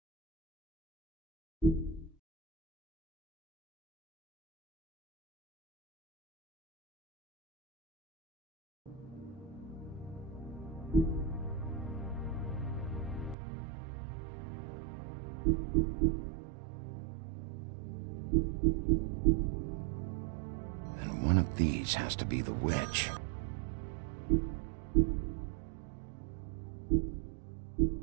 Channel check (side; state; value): left; drops out; at 13.4 s